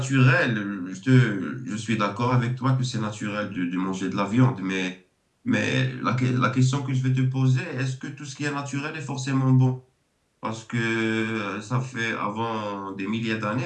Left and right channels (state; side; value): identical; both; correlation 1.00